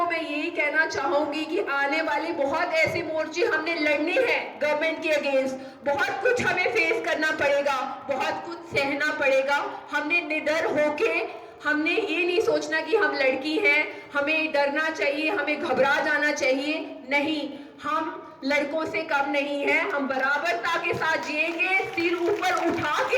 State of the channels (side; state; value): both; identical; correlation 1.00